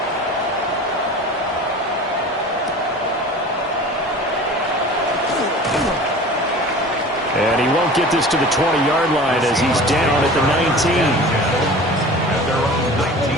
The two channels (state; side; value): normal; both; correlation 0.39